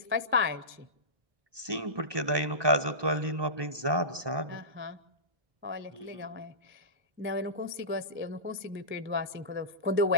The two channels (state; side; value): late; left; 1.2 ms